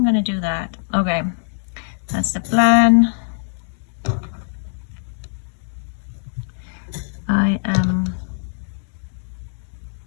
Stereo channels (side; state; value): right; silent; digital silence